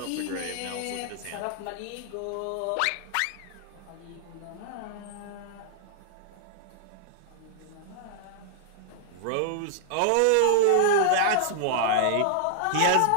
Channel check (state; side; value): different; both; correlation -0.01